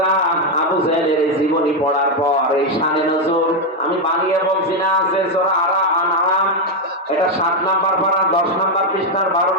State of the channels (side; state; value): both; normal; correlation 0.04